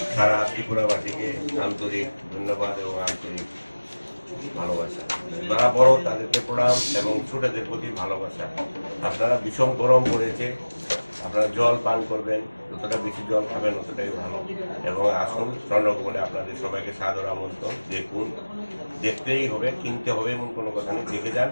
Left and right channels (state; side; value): inverted; both; correlation -1.00